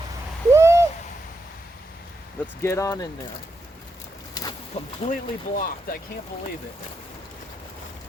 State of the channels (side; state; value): both; normal; correlation 0.83